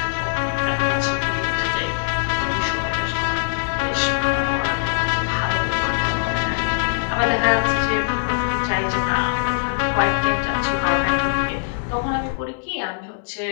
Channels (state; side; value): silent; right; 63 dB below the other